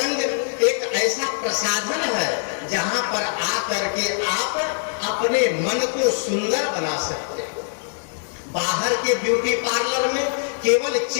एक ऐसा प्रसाधन है जहां पर आकर के आप अपने मन को सुंदर बना सकते हैं। बाहर के ब्यूटी पार्लर में केवल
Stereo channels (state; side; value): silent; right; 59 dB below the other